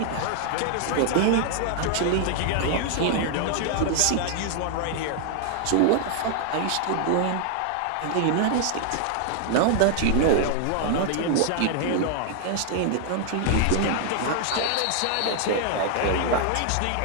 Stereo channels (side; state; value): both; different; correlation 0.00